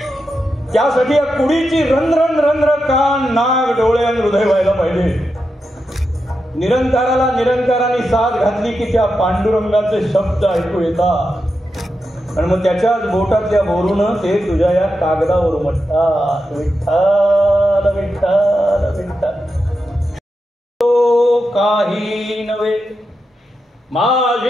त्यासाठी या कुडीची रंध्र रंध्र कान, नाक, डोळे आणि हृदय व्हायला पाहिजे. निरंकाराला निरंकाराने साथ घातली की त्या पांडुरंगाचे शब्द ऐकू येतात, आणि मग त्याच्याच बोटातल्या बोरून ते तुझ्या या कागदावर म्हणतात विठ्ठल विठ्ठल विठ्ठल. काही नव्हे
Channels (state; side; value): normal; both; correlation 0.88